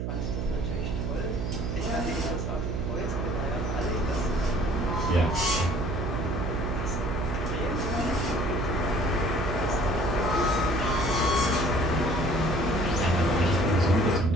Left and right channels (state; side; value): noise; right; hum, 2 dB below the sound